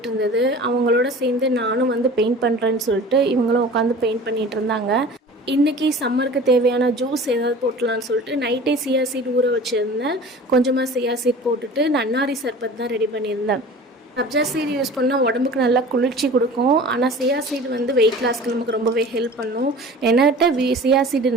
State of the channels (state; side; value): normal; both; correlation 0.41